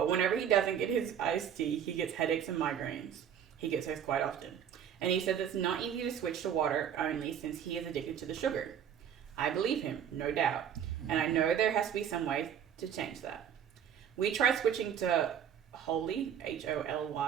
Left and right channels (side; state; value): left; quieter; 8.8 dB